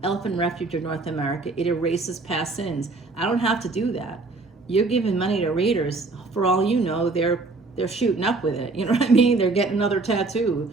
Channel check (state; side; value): quieter; left; 3.6 dB